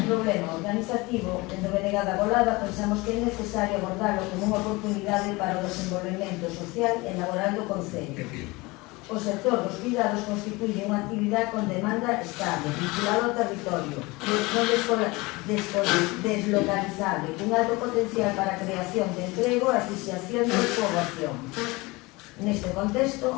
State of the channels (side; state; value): right; quieter; 23.3 dB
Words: problema organizativo, dentro de Negada Golada, pensamos que é necesario abordarlo como unha oportunidade para o desenvolvemento social e laboral do Concello. O sector dos cuidados constituye unha actividade con demanda estable, vinculada ao territorio, deslocalizable, con alto potencial para a creación de emprego e asociación de poboación. Neste